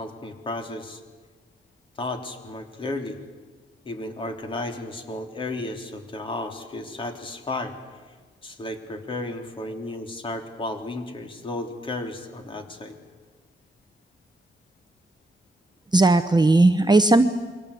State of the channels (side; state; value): both; normal; correlation 0.76